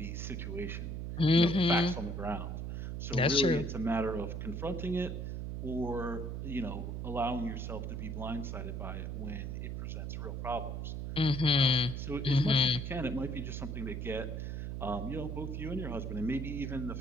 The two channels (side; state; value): right; noise; hum, 4 dB below the sound